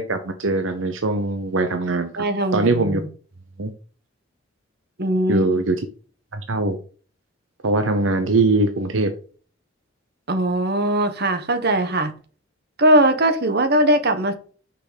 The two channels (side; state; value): both; normal; correlation 0.02